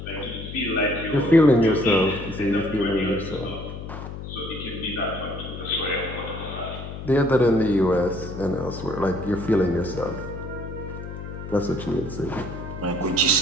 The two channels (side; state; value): left; noise; hum, 9 dB below the sound